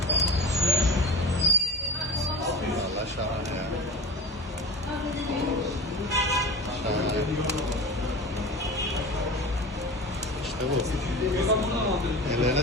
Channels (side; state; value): both; normal; correlation 0.33